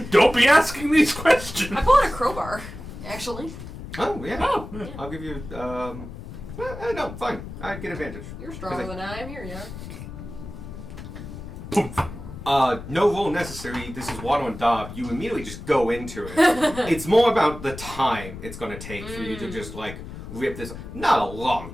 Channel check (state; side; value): noise; left; rumble, 11 dB below the sound